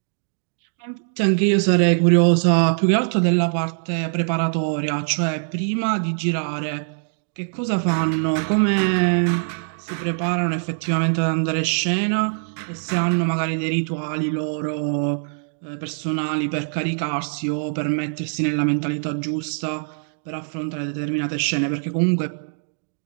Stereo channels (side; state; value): left; silent; digital silence